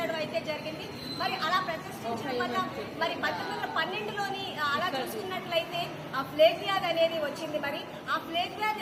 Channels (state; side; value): identical; both; correlation 1.00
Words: అయితే జరిగింది. మరి అలా ప్రతిష్ఠించడం వల్ల మరి 1912లోని అలా చూసుకున్నట్లయితే ఆ ప్లేగ్ వ్యాధి అనేది వచ్చింది. మరి ఆ ప్లేగ్